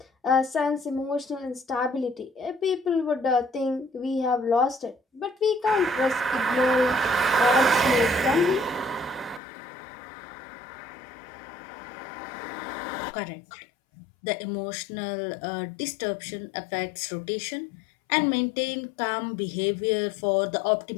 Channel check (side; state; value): right; drops out; at 9.4 s